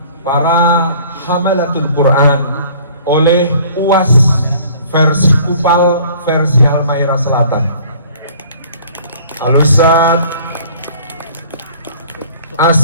para hamalatul Quran oleh UAS versi Kupal, versi Halmahera Selatan. Al-Ustaz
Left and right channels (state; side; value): inverted; both; correlation -0.52